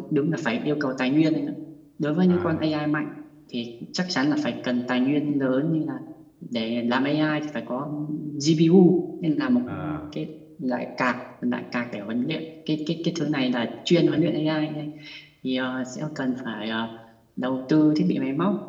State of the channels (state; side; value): identical; both; correlation 1.00